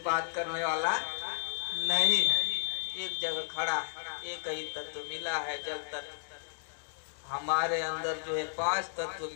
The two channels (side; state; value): right; silent; digital silence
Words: बात करने वाला नहीं है। एक जगह खड़ा है, एक ही तत्व मिला है। जब तक हमारे अंदर जो है 5 तत्व